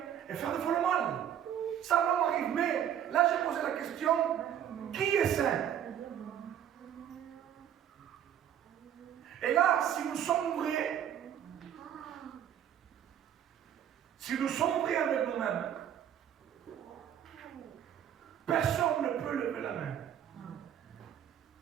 et faire des fois le mal. Ça l'homme arrive. Mais là, j'ai posé la question, qui est saint? Et là, si nous sommes vrais, avec nous-mêmes, personne ne peut lever la main.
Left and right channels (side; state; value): left; quieter; 9.9 dB